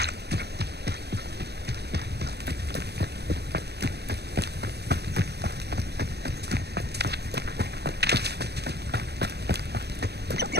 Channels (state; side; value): late; left; 0.48 ms